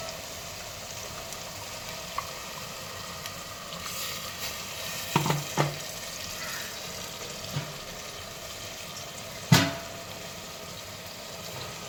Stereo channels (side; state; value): both; identical; correlation 1.00